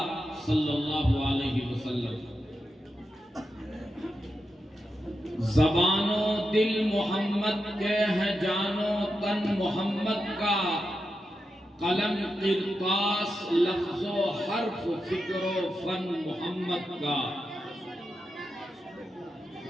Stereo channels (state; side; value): normal; both; correlation 0.88